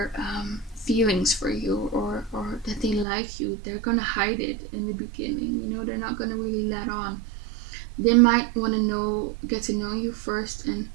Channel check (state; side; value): drops out; left; at 3.1 s